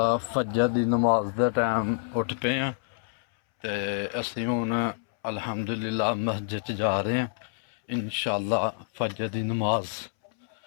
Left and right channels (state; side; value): silent; right; 60 dB below the other